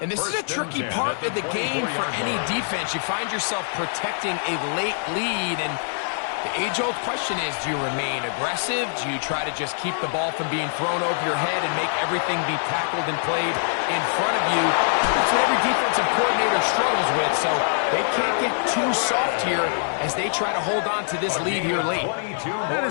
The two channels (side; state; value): right; silent; digital silence